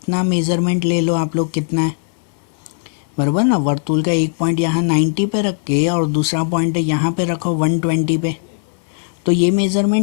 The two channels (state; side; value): silent; right; digital silence